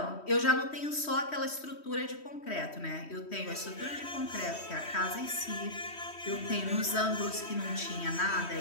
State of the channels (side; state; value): right; late; 3.1 ms